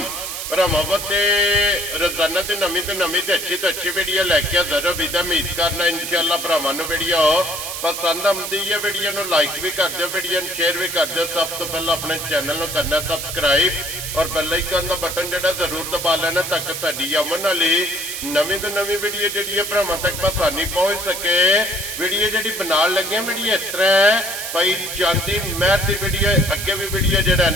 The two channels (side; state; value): right; noise; hiss, 6 dB below the sound